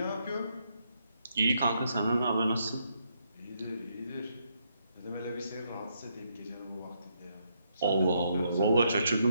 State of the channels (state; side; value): inverted; both; correlation -0.76